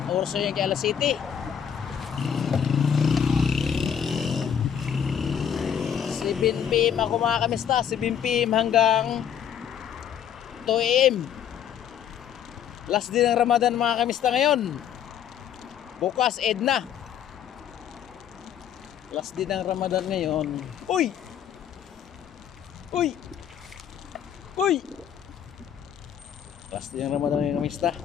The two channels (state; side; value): quieter; right; 8.8 dB